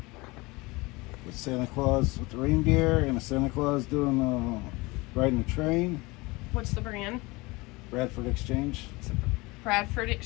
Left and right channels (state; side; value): quieter; right; 23.6 dB